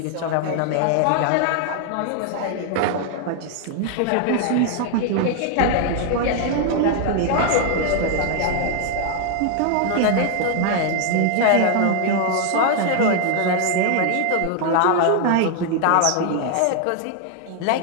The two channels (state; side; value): different; both; correlation 0.00